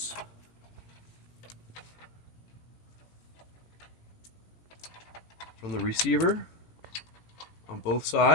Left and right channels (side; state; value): right; late; 18 ms